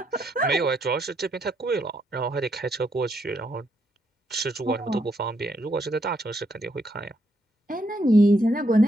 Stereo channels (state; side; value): normal; both; correlation 0.76